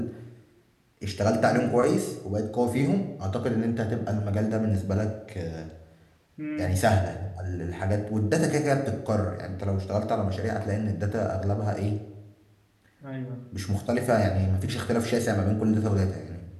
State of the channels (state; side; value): identical; both; correlation 1.00